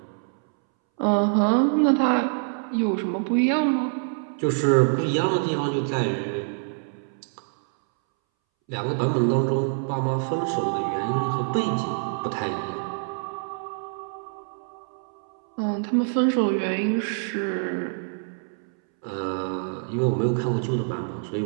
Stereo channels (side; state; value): left; silent; 61 dB below the other